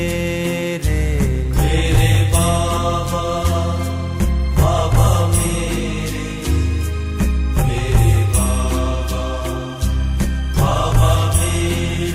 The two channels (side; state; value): both; identical; correlation 1.00